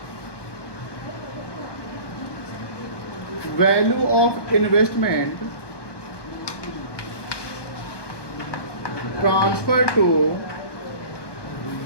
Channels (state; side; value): late; right; 1.2 ms